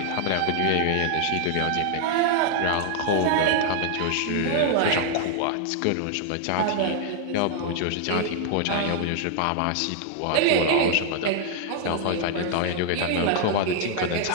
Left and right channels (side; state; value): both; different; correlation 0.00